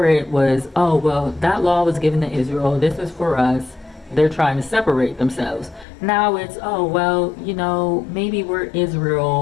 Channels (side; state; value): right; drops out; at 5.9 s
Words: it was, oh, well, that law was given to Israel, this is for us. They're trying to separate themselves. Now it's, oh, well, maybe we're